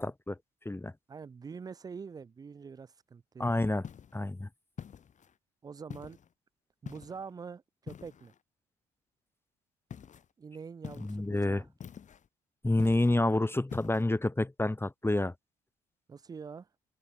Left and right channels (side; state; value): both; normal; correlation 0.94